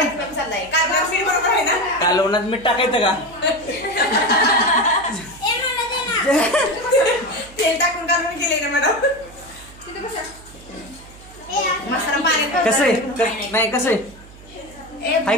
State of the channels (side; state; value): right; noise; hum, 21 dB below the sound